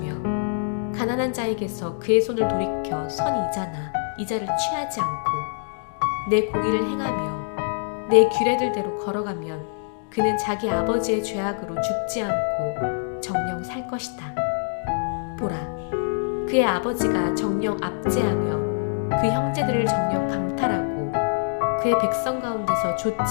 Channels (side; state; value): right; silent; digital silence